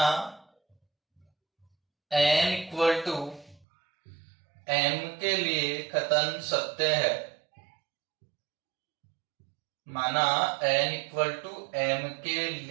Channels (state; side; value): drops out; left; at 3.7 s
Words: n इक्वल टू m के लिए कथन सत्य है, माना n इक्वल टू m के